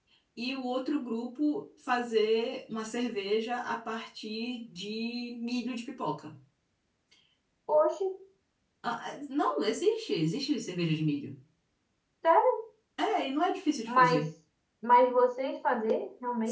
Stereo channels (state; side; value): identical; both; correlation 1.00